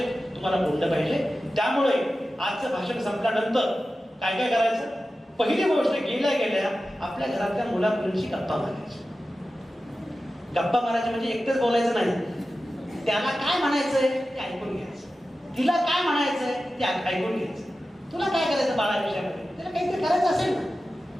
तुम्हाला बोललं पाहिजे. त्यामुळे आजचं भाषण संपल्यानंतर काय काय करायचं? पहिली गोष्ट, गेल्या आपल्या घरातल्या मुला मुलींशी गप्पा मारायची. गप्पा मारायचे म्हणजे एकटेच बोलायचं नाही, त्याला काय म्हणायचंय ते ऐकून घ्यायचं, तिला काय म्हणायचंय ते ऐकून घ्यायचं. तुला काय करायचं बाळा विषयामध्ये, तिला काहीतरी करायचं असेल ना,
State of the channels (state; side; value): normal; both; correlation 0.94